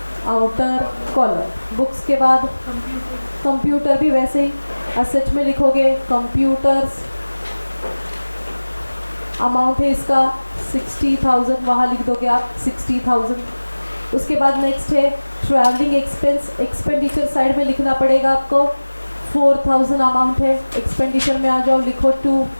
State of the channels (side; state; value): both; inverted; correlation -1.00